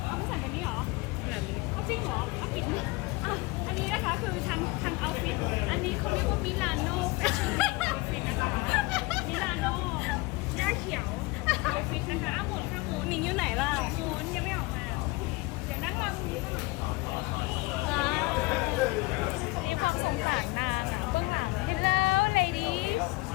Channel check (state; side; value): quieter; right; 23.7 dB